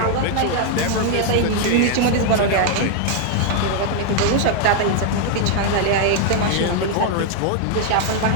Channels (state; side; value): different; both; correlation 0.00